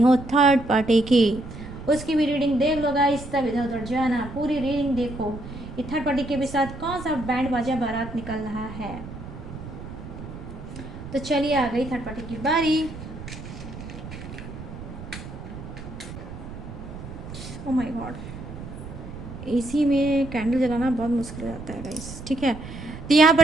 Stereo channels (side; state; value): right; noise; rumble, 11 dB below the sound